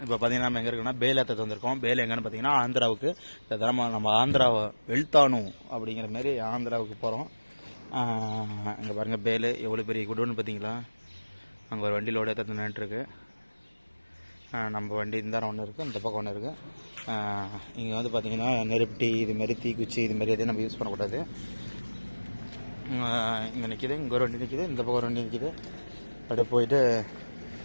இப்போ பார்த்தீங்கன்னா நம்ம எங்கே இருக்குன்னா பேல் ஏற்ற வந்திருக்கோம். பேல் எங்கன்னு பார்த்தீங்கன்னா ஆந்திராவுக்கு. இந்த தடவை நம்ம ஆந்திராவை வெளுத்தானு அப்படிங்கிற மாதிரி ஆந்திராவுக்கு போகிறோம். இங்கே பாருங்கள் பேல் எவ்வளோ பெரிய குடோன்னு பார்த்தீங்களா. அங்கே ஒரு வண்டி லோடு ஏற்ற நின்றுருக்கு. நம்ம வண்டி இந்த ஒன்று இருக்குது, இந்த பக்கம் ஒன்று இருக்குது. இங்கே வந்து பார்த்திங்கன்னா நெருப்பட்டி இதுமாரி தீக்குச்சி இதுமாரி எதையும் நம்ம யூஸ் பண்ணக்கூடாது. இங்கே நிற்கிது, இங்கே ஒரு வண்டி நிற்கிது, இந்த பக்கம் ஒரு வண்டி நிற்கிது. அப்படியே போயிட்டு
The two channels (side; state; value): both; inverted; correlation -1.00